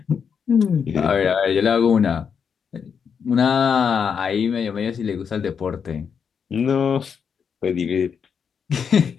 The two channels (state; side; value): quieter; right; 6.7 dB